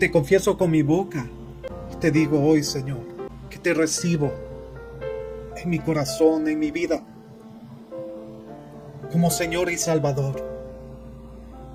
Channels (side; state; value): both; identical; correlation 1.00